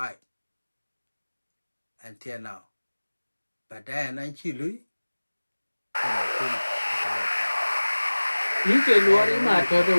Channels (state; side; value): inverted; both; correlation -1.00